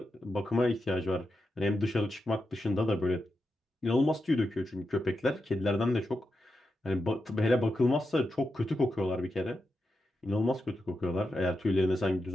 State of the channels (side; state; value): both; normal; correlation 0.88